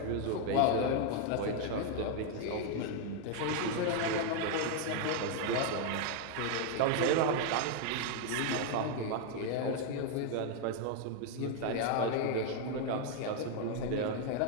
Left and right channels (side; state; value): both; different; correlation 0.00